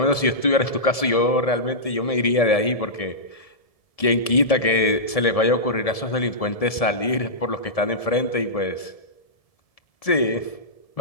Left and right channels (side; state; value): right; late; 1.7 ms